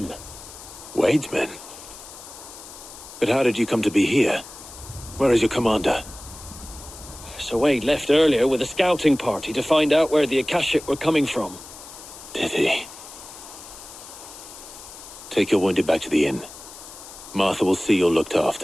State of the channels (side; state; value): left; noise; hiss, 16 dB below the sound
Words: Wade's men? But how did you come to be here? Where is your commander? Sir Wade left earlier with a scouting party to find out where the Akashic were coming from. Did he? Take your wounded back to the inn. Martha will see you're looked